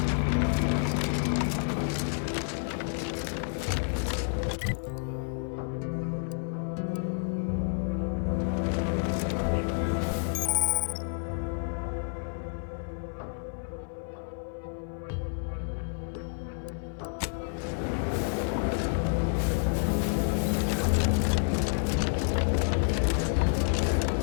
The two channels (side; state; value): right; silent; 58 dB below the other